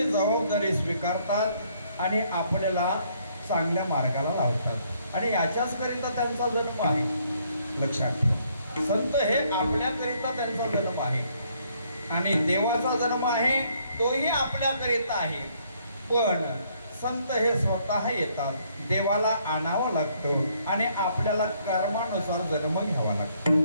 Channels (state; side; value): inverted; both; correlation -0.68